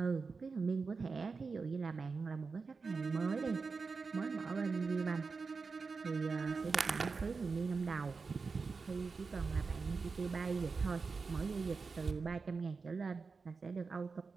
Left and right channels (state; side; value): quieter; left; 4.6 dB